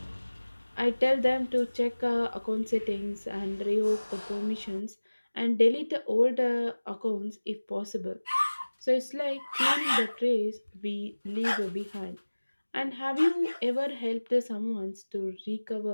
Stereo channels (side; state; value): both; inverted; correlation -1.00